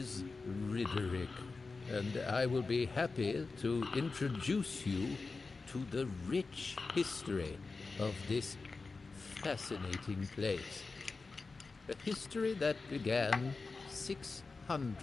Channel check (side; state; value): right; quieter; 4.0 dB